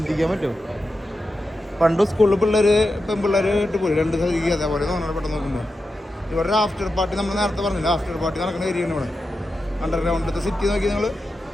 പറ്റുമോ? പണ്ട് സ്കൂളിൽ പെൺപിള്ളേർ ഇട്ട് പോയി 2 സ്ഥലത്തേക്ക് അതേപോലെ തോന്നണം പെട്ടെന്ന് നോക്കുമ്പോൾ. ഇവിടെ ഒരു ആഫ്റ്റർ പാർട്ടി നമ്മൾ നേരത്തെ പറഞ്ഞില്ല, ആഫ്റ്റർ പാർട്ടി നടക്കുന്ന ഏരിയയാണ് ഇവിടെ. അണ്ടർഗ്രൗണ്ടിലത്തെ സിറ്റി നോക്കി നിങ്ങൾ,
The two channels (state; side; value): normal; both; correlation 0.90